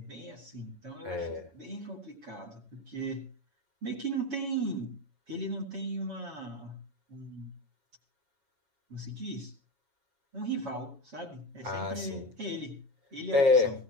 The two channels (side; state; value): left; late; 7.2 ms